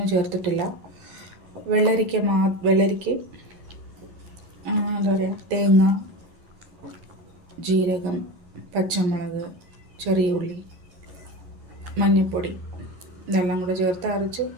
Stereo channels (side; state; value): left; late; 11 ms